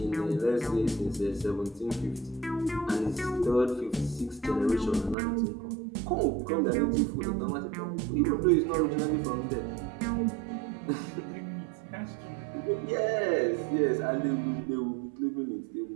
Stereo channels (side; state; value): left; drops out; at 5.2 s